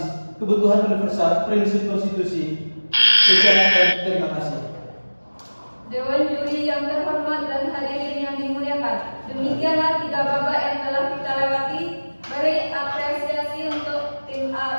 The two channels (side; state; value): both; inverted; correlation -1.00